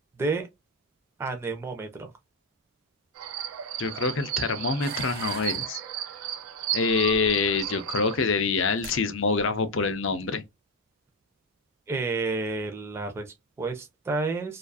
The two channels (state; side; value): normal; both; correlation 0.07